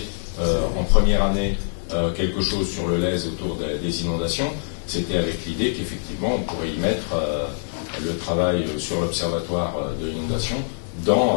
en première année quelque chose sur le Lèze autour des inondations, c'était avec l'idée qu'effectivement on pourrait y mettre le travail sur l'observatoire de l'inondation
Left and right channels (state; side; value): silent; right; digital silence